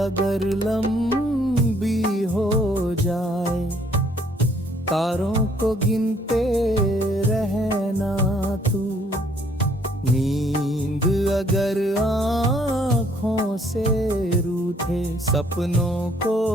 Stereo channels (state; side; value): normal; both; correlation 0.64